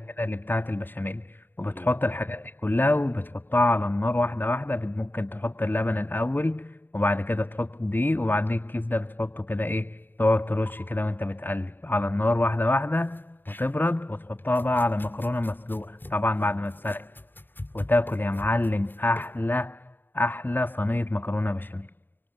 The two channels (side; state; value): right; late; 0.093 ms